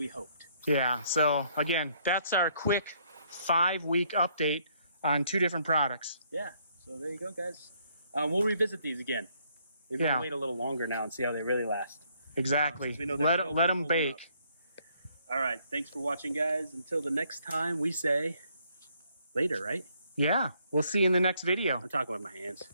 hoped. Yeah, so again, that's our quick 5-week update on 2 different products. Yeah, so there you go, guys. We'll revisit these again. Maybe we'll wait a little longer now and see how they really last. Exactly. We know let them bake. All right, thanks for watching, guys. Until the next time, we say later, right? Yeah, we'll see you in the next video. I'm talking with my hands.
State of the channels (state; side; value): inverted; both; correlation -0.68